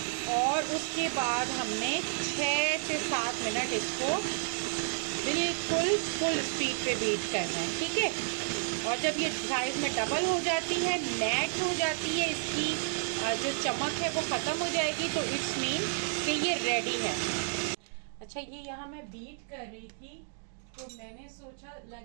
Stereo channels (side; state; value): left; silent; 57 dB below the other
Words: और उसके बाद हमने 6 से 7 मिनट इसको बिल्कुल फुल स्पीड पे बीट करना है, ठीक है। और जब ये साइज में डबल हो जाती है, मैट हो जाती है, इसकी जो चमक है वो ख़त्म हो जाएगी, तो इट्स मीन कि ये रेडी है। अच्छा, ये यहाँ मैं बीट कर रही थी तो मैंने सोचा